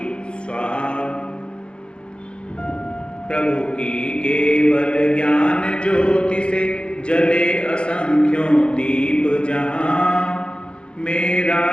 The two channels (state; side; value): late; right; 0.055 ms